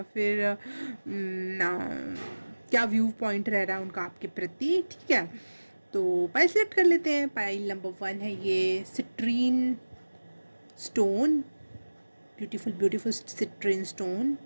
फिर क्या व्यू पॉइंट रह रहा है उनका आपके प्रति। ठीक है, तो पाइल सेलेक्ट कर लेते हैं। पाइल नंबर 1 है ये citrine stone, beautiful beautiful citrine stone.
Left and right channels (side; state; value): both; inverted; correlation -1.00